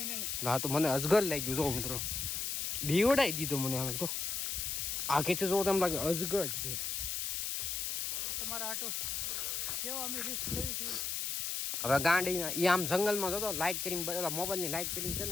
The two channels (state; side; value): noise; left; hiss, 1 dB below the sound